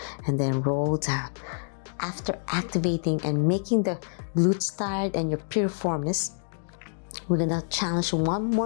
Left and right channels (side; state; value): right; silent; digital silence